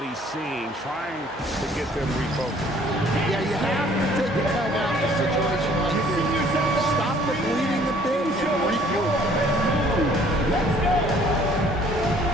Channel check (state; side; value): normal; both; correlation 0.58